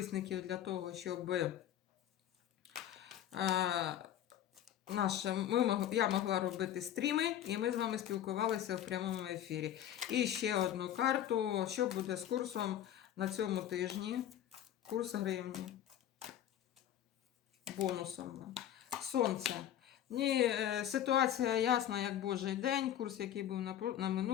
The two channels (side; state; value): right; quieter; 11.1 dB